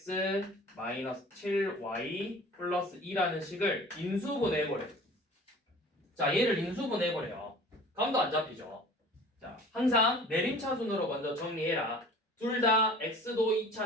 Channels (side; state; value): both; normal; correlation 0.44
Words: 마이너스 7y 플러스 2라는 식을 인수분해해버려. 자, 얘를 인수분해해버려요. 감도 안 잡히죠. 자, 항상 내림차순으로 먼저 정리해라. 둘 다 x도